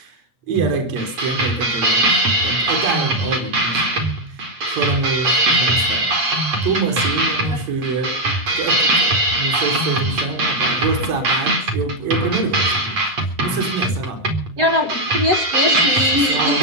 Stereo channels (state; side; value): late; left; 8.4 ms